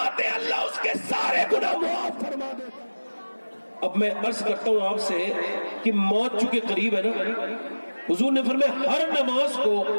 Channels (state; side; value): inverted; both; correlation -1.00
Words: हैं अल्लाह उसके सारे गुनाह माफ़ फरमा देता है। अब मैं अर्ज करता हूं आपसे कि मौत चूंकि करीब है ना, हुजूर ने फरमाया हर नमाज को